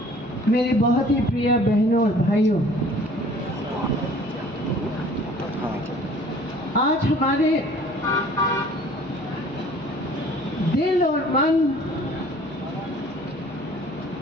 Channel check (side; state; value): left; noise; hum, 26 dB below the sound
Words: मेरे बहुत ही प्रिय बहनों और भाइयों, आज हमारे दिल और मन